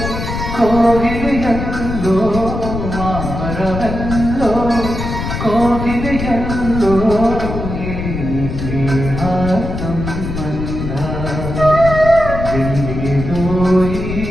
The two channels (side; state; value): left; noise; rumble, 5 dB below the sound